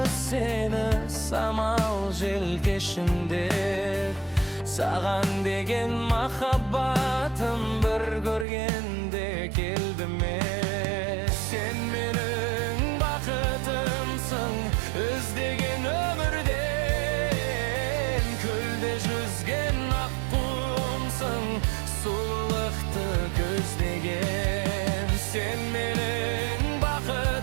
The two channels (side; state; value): left; drops out; at 8.5 s